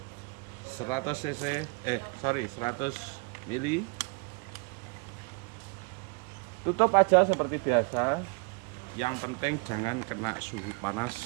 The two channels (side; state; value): left; quieter; 32.4 dB